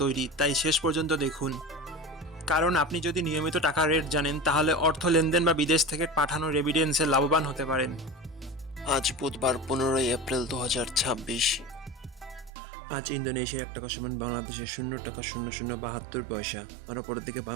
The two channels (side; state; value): left; drops out; at 12.5 s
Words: তৈরি, তাই শেষ পর্যন্ত দেখুন। কারণ আপনি যদি নিয়মিত টাকার রেট জানেন, তাহলে অর্থ লেনদেন বা বিদেশ থেকে পাঠানো রেমিটেন্সে লাভবান হতে পারেন। আজ বুধবার 15ই এপ্রিল 2026। আজ ইন্দোনেশিয়ার 1 টাকা সমান বাংলাদেশের 0.0072 পয়সা, আর অপরের দিকে